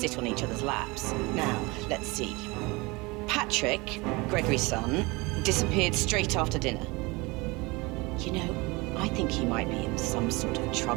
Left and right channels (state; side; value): quieter; left; 24.7 dB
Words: on each other's laps. Now, let's see. Patrick, Gregory's son, disappeared straight after dinner. You know, I think he might be in some sort of